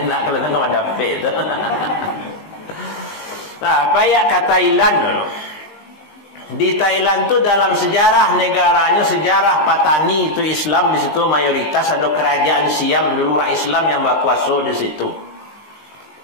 Tak kalau tengok ada capek tu. Nah, payah ke Thailand dulu. Di Thailand tu dalam sejarah negaranya, sejarah Patani itu Islam di situ mayoritas, ada kerajaan Siam dulu orang Islam yang berkuasa di situ.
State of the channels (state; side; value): late; right; 19 ms